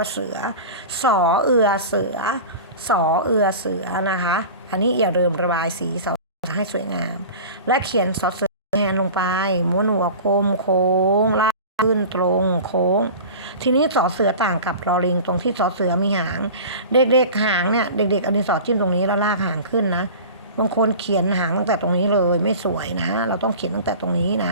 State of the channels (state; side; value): inverted; both; correlation -0.36